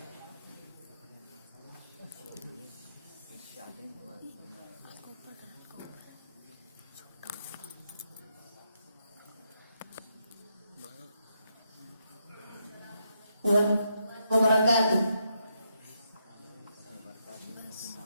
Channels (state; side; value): inverted; both; correlation -0.80